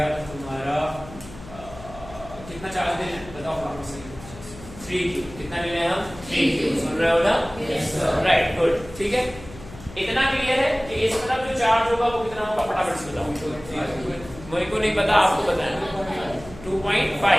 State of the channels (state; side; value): noise; left; hum, 17 dB below the sound